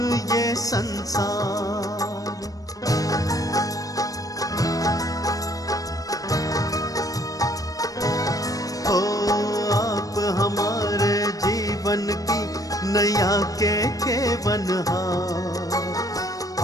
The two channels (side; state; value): right; late; 0.17 ms